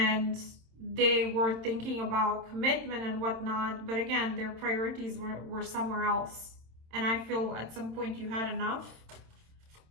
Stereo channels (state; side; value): late; left; 27 ms